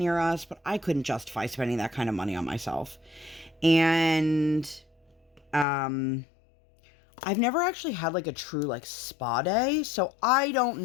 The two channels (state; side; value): drops out; right; at 5.7 s